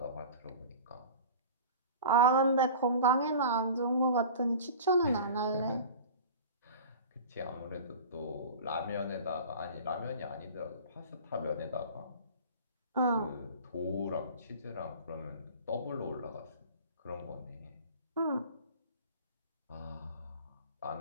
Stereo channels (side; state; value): both; inverted; correlation -0.38